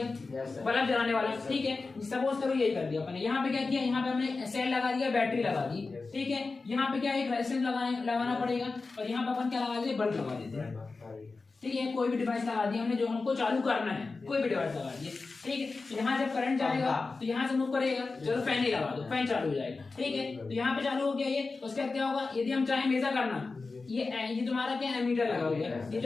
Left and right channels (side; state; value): right; quieter; 3.9 dB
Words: बल्ब जलाने वाला, ठीक है। सपोज करो यही कर दिया अपन ने। यहाँ पे क्या किया, यहाँ पे हमने सेल लगा दिया, बैटरी लगा दी, ठीक है। यहाँ पे क्या एक रेजिस्टेंस लगाना पड़ेगा, और यहाँ पे अपन क्या लगा देते, बल्ब लगा देते हैं, ठीक है। कोई भी डिवाइस लगा दिया हमने जो हमको चालू करना है, कोई भी डिवाइस लगा दिए, ठीक है। तो यहाँ जब करंट जाएगा तो यहाँ से मूव करेगा, चलो फैन ही लगा दो, फैन चालू हो जाएगा, ठीक है। तो यहाँ पे चालू हो गया ये, उसके बाद क्या होगा, यदि हम चाहे मेजर करना, ये तुम्हारा क्या एमीटर लगा हुआ है, ये